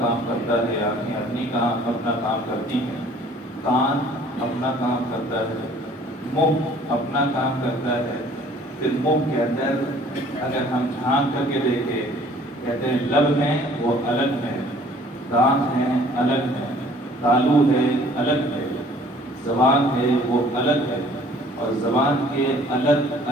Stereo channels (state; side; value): normal; both; correlation 0.54